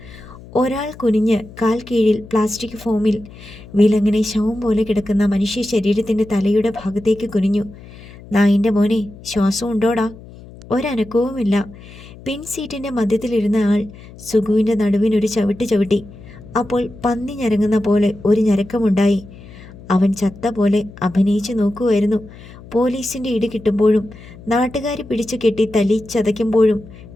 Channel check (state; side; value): noise; left; hum, 18 dB below the sound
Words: ഒരാൾ കുനിഞ്ഞ് കാൽ കീഴിൽ പ്ലാസ്റ്റിക് ഫോമിൽ വിലങ്ങനെ ശവം പോലെ കിടക്കുന്ന മനുഷ്യ ശരീരത്തിൻ്റെ തലയുടെ ഭാഗത്തേക്ക് കുനിഞ്ഞു. നായിൻ്റെ മോനെ, ശ്വാസം ഉണ്ടോടാ? ഒരനക്കവുമില്ല. പിൻ സീറ്റിൻ്റെ മധ്യത്തിലിരുന്ന ആൾ സുഖുവിൻ്റെ നടുവിനൊരു ചവിട്ട് ചവിട്ടി. അപ്പോൾ പന്നി ഞരങ്ങുന്ന പോലെ ഒരു ഞരക്കമുണ്ടായി. അവൻ ചത്ത പോലെ അഭിനയിച്ചു നോക്കുമായിരുന്നു. പോലീസിൻ്റെ ഇടി കിട്ടുമ്പോഴും നാട്ടുകാർ പിടിച്ചു കെട്ടി തല്ലി ചതയ്ക്കുമ്പോഴും